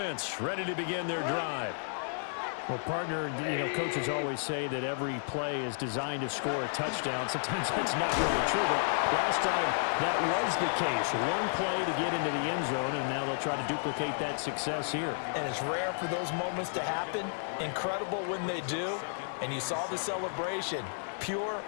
ready to begin their drive. Well, partner, coaches always say that every play is designed to score a touchdown. Sometimes that's not really true, but last time that was the case. One play to get into the end zone, and now they'll try to duplicate that success here. And it's rare for those moments to happen. Incredible when they do. And you saw the celebration. Pure,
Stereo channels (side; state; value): right; silent; digital silence